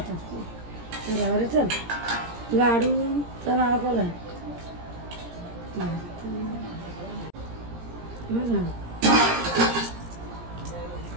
बरोबर. चल लाडू तर नाव काय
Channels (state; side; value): late; left; 17 ms